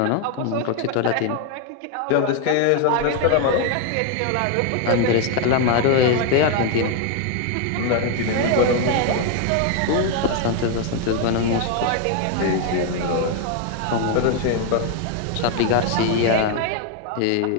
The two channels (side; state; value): both; different; correlation 0.01